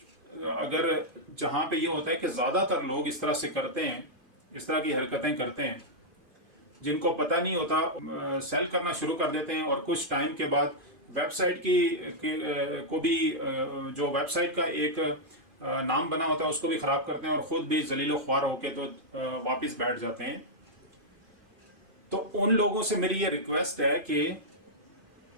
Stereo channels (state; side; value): late; left; 2.5 ms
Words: अगर जहाँ पे ये होता है कि ज़्यादातर लोग इस तरह से करते हैं, इस तरह की हरकतें करते हैं, जिनको पता नहीं होता सेल करना शुरू कर देते हैं, और कुछ टाइम के बाद वेबसाइट को भी जो वेबसाइट का एक नाम बना होता है उसको भी ख़राब करते हैं, और ख़ुद भी जलीलो ख्वार होके तो वापस बैठ जाते हैं। तो उन लोगों से मेरी ये रिक्वेस्ट है कि